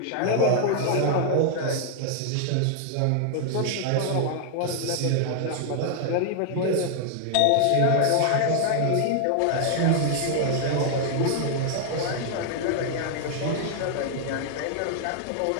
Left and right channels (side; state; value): both; different; correlation 0.00